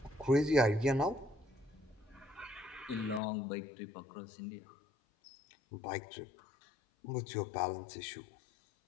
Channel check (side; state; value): right; drops out; at 3.2 s